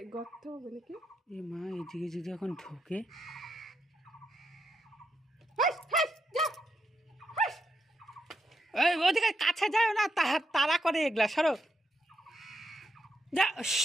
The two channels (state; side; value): normal; both; correlation 0.82